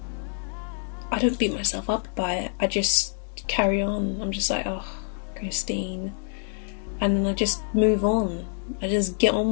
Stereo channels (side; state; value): right; silent; 61 dB below the other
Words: I don't beat myself up by it. I just carry on. I'm just like, oh, Christine. And then I just move on. I just get